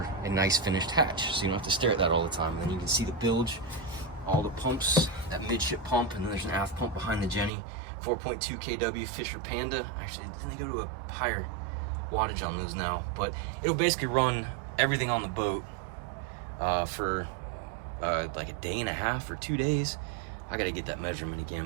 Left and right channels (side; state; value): left; drops out; at 7.5 s